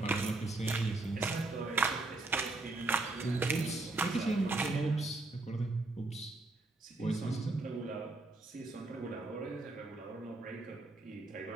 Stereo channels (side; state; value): left; quieter; 3.1 dB